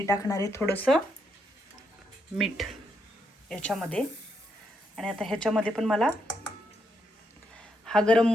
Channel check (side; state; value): both; normal; correlation 0.79